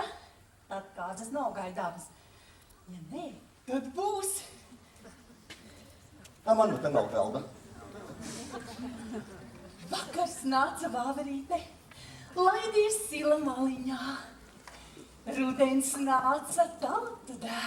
tad kāzas nav gaidāmas. Ja nē, tad būs. Man nu te nav galda. Vakars nāca vāverīte, laidies sila maliņā. Rudens nāca tautu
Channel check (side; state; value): both; identical; correlation 1.00